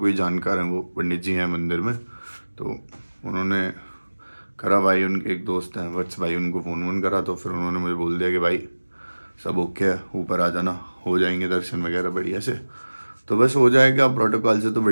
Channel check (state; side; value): inverted; both; correlation -1.00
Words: जानकार है, वो पंडित जी हैं मंदिर में, तो उन्होंने करा भाई, उनके एक दोस्त हैं वत्स भाई, उनको फ़ोन वोन करा तो फिर उन्होंने मुझे बोल दिया कि भाई सब ओके है, ऊपर आ जाना, हो जाएंगे दर्शन वगैरह बढ़िया से। तो बस हो जाएगा प्रोटोकॉल से तो